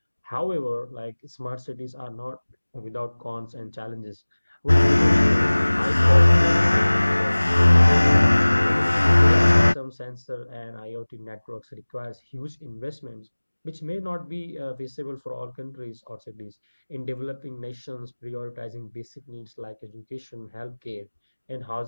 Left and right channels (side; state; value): both; inverted; correlation -1.00